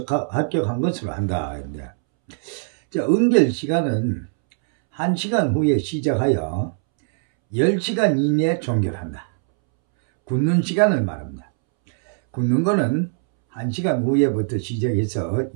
합격한 것으로 한다. 자, 응결 시간은 1시간 후에 시작하여 10시간 이내에 종결한다. 굳는 시간을 말합니다. 굳는 거는 1시간 후에부터 시작해서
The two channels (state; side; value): silent; left; 65 dB below the other